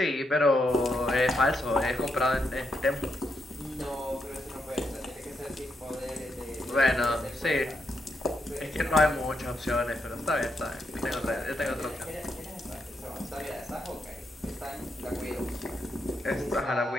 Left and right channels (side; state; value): both; normal; correlation 0.81